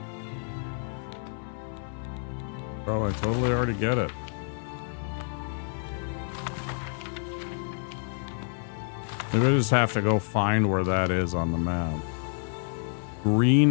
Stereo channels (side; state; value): right; silent; 59 dB below the other